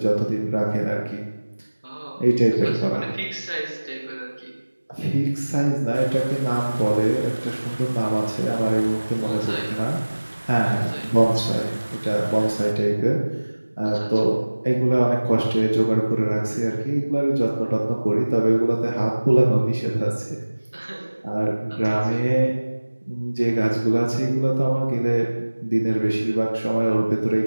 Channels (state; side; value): inverted; both; correlation -1.00